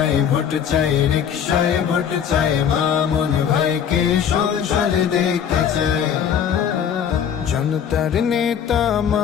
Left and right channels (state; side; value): quieter; right; 8.3 dB